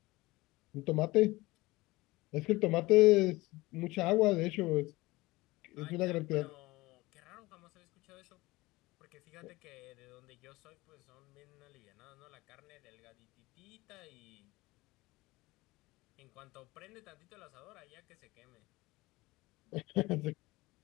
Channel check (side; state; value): right; quieter; 20.7 dB